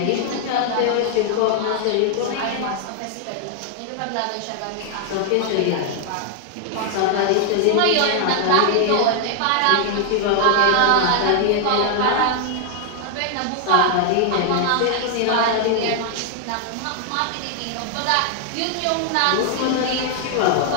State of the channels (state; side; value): different; both; correlation 0.00